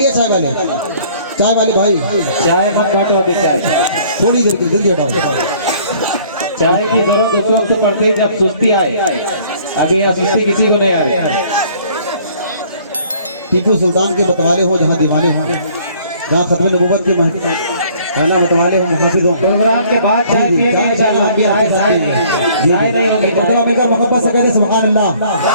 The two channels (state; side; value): inverted; both; correlation -0.57